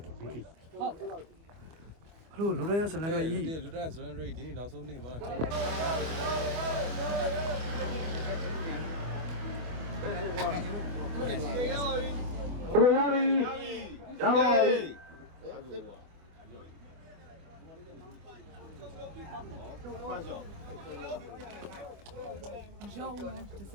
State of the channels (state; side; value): late; left; 25 ms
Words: ဟုတ်ဟလိုလူတိုင်းရဇလန်ကကြီး လူတန်းဇလန်ရိတ်ဒီနေ့နောက်ဆုံးနေ့မှာကျွန်တော်ရပါပြီ